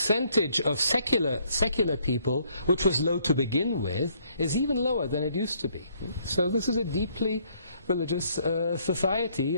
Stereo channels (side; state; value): both; inverted; correlation -0.66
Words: of secular people, which was low to begin with, is even lower than it used to be. So this is a deeply religious